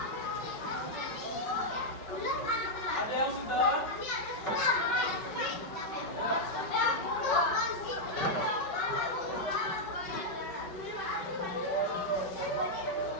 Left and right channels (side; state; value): right; late; 5.4 ms